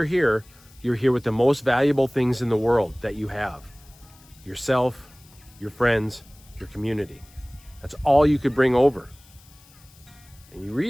here with the most valuable things in the world that you have. Yourself, your friends, your community. That's all you could bring over. And you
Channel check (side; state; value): left; noise; hiss, 26 dB below the sound